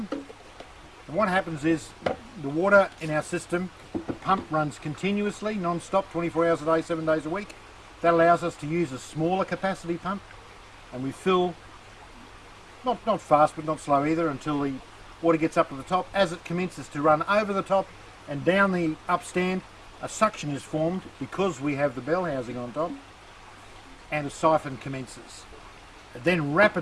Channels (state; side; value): identical; both; correlation 1.00